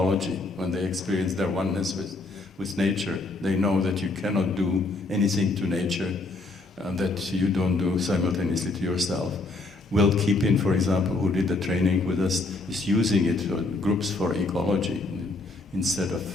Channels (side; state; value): right; quieter; 3.2 dB